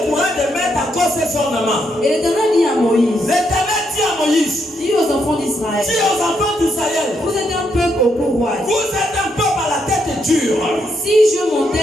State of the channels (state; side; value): normal; both; correlation 0.78